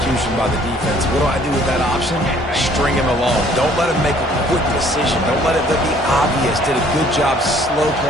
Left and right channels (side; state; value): both; normal; correlation 0.58